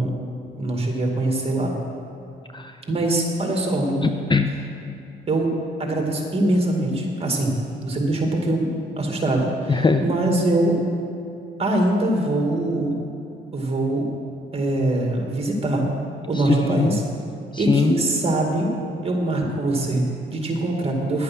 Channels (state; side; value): normal; both; correlation 0.69